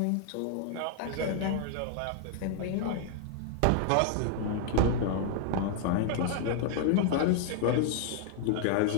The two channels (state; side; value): different; both; correlation 0.00